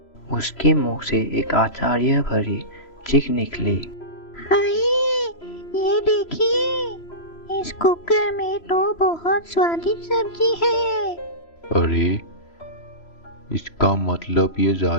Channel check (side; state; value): right; late; 3.0 ms